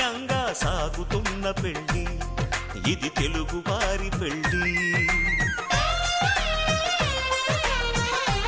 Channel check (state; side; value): identical; both; correlation 1.00